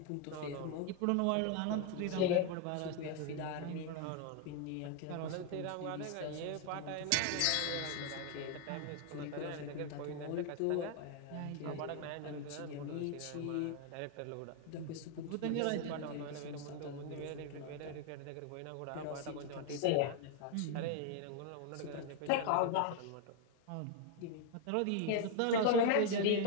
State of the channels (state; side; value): different; both; correlation 0.00